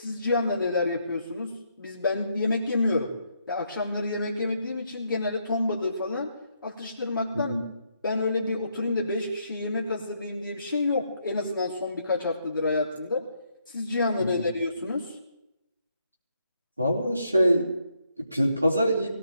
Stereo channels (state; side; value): inverted; both; correlation -0.76